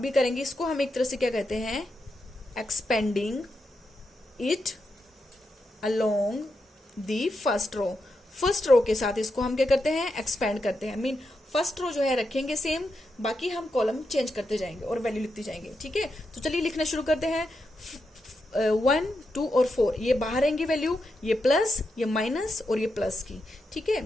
करेंगे इसको हम एक तरह से क्या कहते हैं, expanding it along the first row. First row के साथ इसको हम क्या करते हैं, एक्सपेंड करते हैं। मीन फर्स्ट रो जो है रखेंगे सेम, बाकी हम कॉलम चेंज करते जाएंगे और वैल्यू लिखते जाएंगे, ठीक है। तो चलिए लिखना शुरू करते हैं। 1 2 और 4 ये बाहर आएंगे वैल्यू, ये प्लस ये माइनस और ये प्लस की, ठीक है।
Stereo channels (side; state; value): both; normal; correlation 0.85